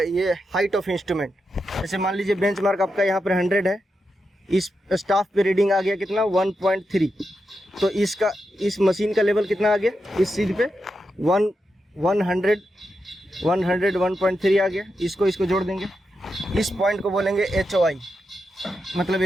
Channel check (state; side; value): normal; both; correlation 0.87